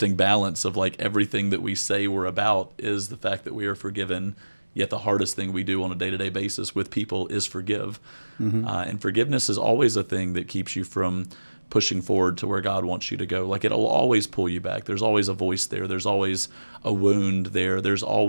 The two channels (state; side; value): inverted; both; correlation -1.00